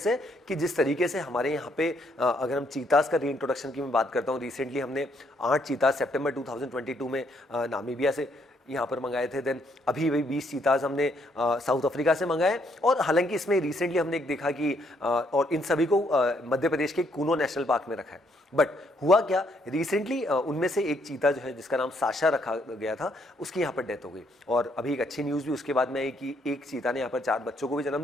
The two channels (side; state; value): both; normal; correlation 0.71